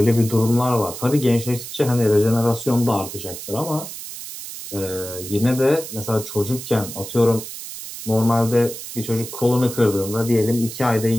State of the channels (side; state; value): right; noise; hiss, 10 dB below the sound